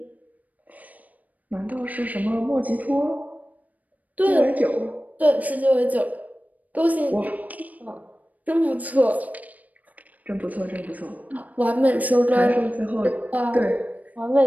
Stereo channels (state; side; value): late; left; 0.075 ms